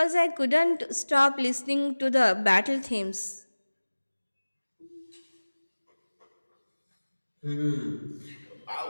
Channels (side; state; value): both; inverted; correlation -1.00